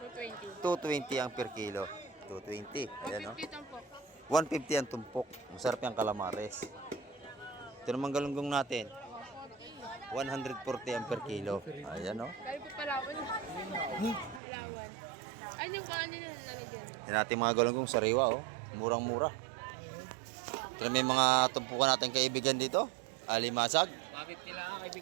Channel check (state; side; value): drops out; left; at 14.4 s